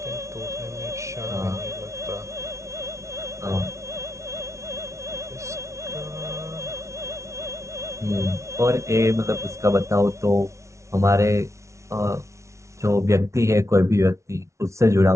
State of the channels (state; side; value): late; left; 0.14 ms